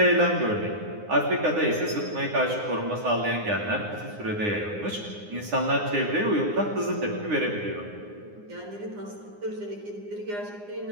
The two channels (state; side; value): late; left; 9.7 ms